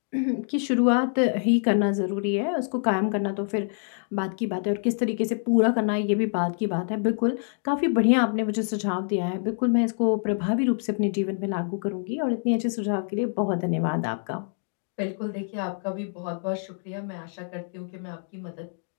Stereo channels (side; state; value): right; silent; 61 dB below the other